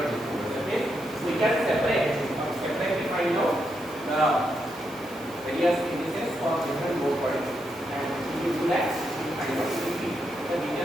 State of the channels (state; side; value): noise; right; hiss, 22 dB below the sound